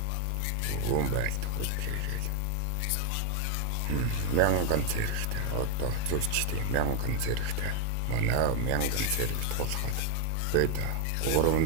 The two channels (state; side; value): different; both; correlation 0.01